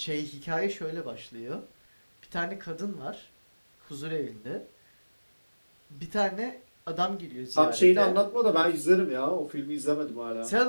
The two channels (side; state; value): both; inverted; correlation -1.00